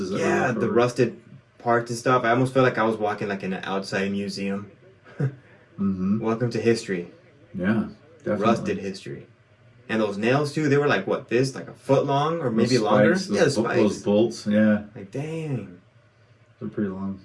The rusted parts and stuff. I almost felt like I was walking like in an outside museum. Mm-hmm. Welcome to history. Yeah, definitely. Rusted history. And those nails too, they were like what, this? Like a foot long or maybe longer? Yeah, the spikes. Those bolts, yeah. Like dang. They're pretty long.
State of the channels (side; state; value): both; identical; correlation 1.00